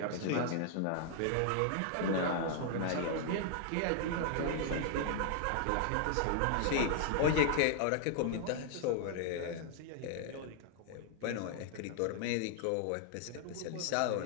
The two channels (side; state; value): both; different; correlation 0.00